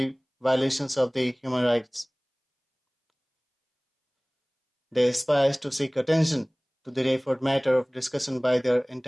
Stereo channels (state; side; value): identical; both; correlation 1.00